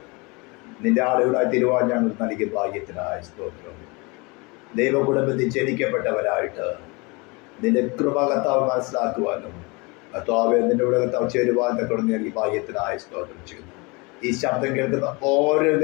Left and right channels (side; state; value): right; quieter; 27.6 dB